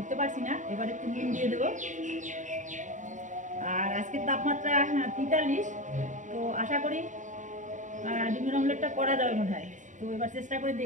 পারছি না। এবার একটু নুন দিয়ে দেবো। আর আজকের তাপমাত্রা 43, তো আশা করি ডিমের অমলেটটা করা যাবে মনে হয়। তো এবার চেষ্টা করে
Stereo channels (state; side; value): late; left; 0.36 ms